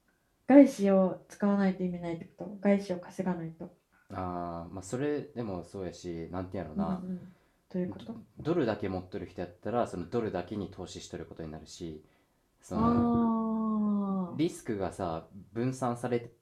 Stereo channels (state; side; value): identical; both; correlation 1.00